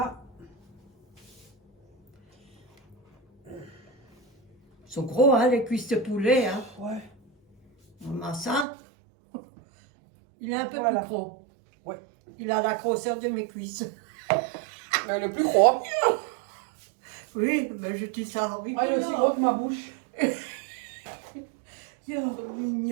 Ils sont gros, hein, les cuisses de poulet. Hein. Ouais. Maman, ça, il est un peu Voilà. plus gros. Ouais. Il a la grosseur de mes cuisses. Mais le plus gros. Oui, mais je dis ça en Moi, il est aussi gros que ma bouche. Oh,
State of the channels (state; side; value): drops out; left; at 8.7 s